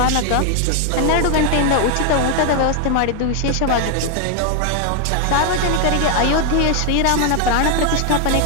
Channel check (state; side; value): different; both; correlation 0.01